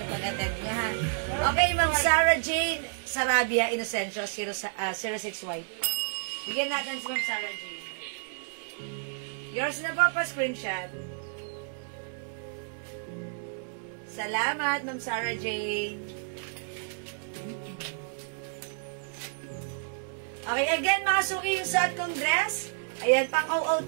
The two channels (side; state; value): left; silent; digital silence